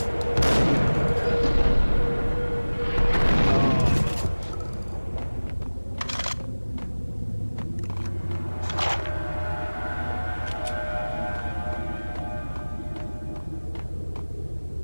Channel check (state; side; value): inverted; both; correlation -1.00